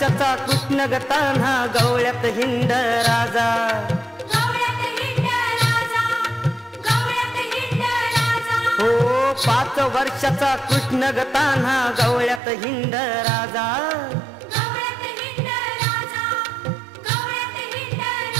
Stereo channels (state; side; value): drops out; left; at 12.4 s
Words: कृष्ण गताना गवळ्यात हिंड राजा, हो 5 वर्षाचा कृष्ण गताना गवळ्यात हिंड राजा,